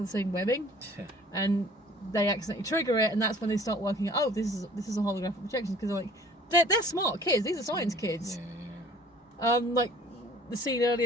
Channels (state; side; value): normal; both; correlation 0.51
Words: the same webbing, Yeah. and they accidentally trigger it, and that's when they start working out. Oh, this is a holographic projection because they're smart kids. These are science kids. Yeah. Like the scene